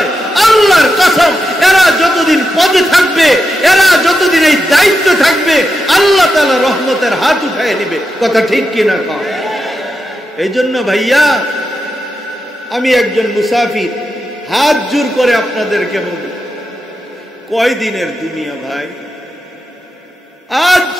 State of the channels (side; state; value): both; normal; correlation 0.87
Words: আল্লাহর কসম, এরা যতদিন পদে থাকবে, এরা যতদিন এই দায়িত্ব থাকবে, আল্লাহ তাআলা রহমতের হাত উঠায় নেবে। কথা ঠিক কিনা কও? এই জন্য ভাইয়া, আমি একজন মুসাফির, হাত জোর করে আপনাদেরকে বলি, কয় দিনের দুনিয়া ভাই? আজ